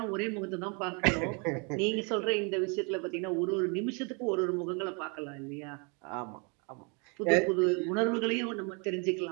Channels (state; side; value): quieter; left; 33.4 dB